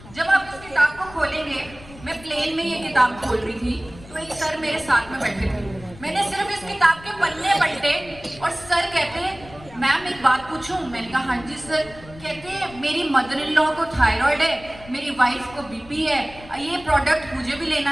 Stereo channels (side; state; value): left; noise; rumble, 20 dB below the sound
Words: जब आप इस किताब को खोलेंगे, मैं प्लेन में ये किताब खोल रही थी तो एक सर मेरे साथ में बैठे थे। मैंने सिर्फ इस किताब के पन्ने पलटे और सर कहते, मैम एक बात पूछूं? मैंने कहा हाँ जी सर। कहते, मेरी मदर इन लॉ को थायराइड है, मेरी वाइफ को बीपी है, ये प्रोडक्ट मुझे भी लेना